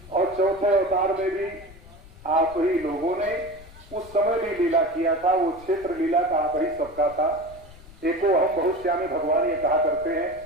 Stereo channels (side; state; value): left; noise; rumble, 20 dB below the sound